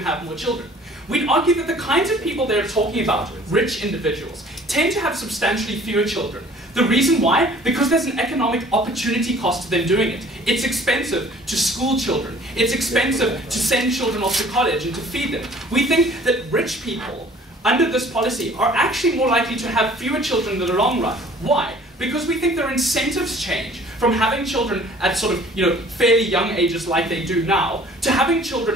more children. We'd argue that the kinds of people they're talking about, rich individuals, tend to have substantially fewer children. The reason why? Because there's an economic opportunity cost to them doing it. It's expensive to school children. It's expensive to send children off to college and to feed them. We think that rich people, under this policy, are actually more likely to have fewer children in the long run. Why? Because we think their incentives change from having children at sort of, fairly young ages like they do now, to having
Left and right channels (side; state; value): both; normal; correlation 0.52